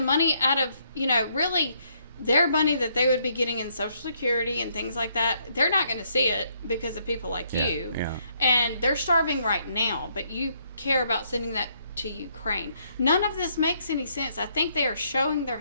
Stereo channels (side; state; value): both; inverted; correlation -0.71